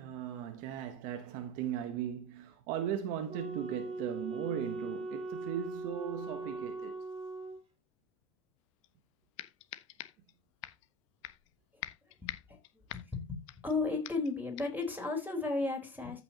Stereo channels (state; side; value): normal; both; correlation 0.33